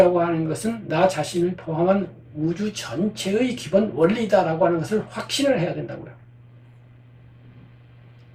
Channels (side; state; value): both; identical; correlation 1.00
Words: 하는 것은 나 자신을 포함한 우주 전체의 기본 원리다라고 하는 것을 확신을 해야 된다고요.